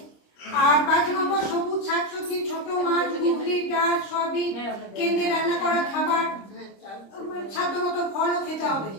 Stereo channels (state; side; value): late; right; 26 ms